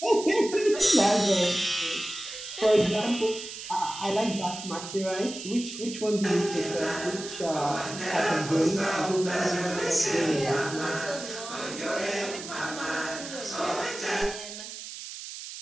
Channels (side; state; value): right; noise; hiss, 10 dB below the sound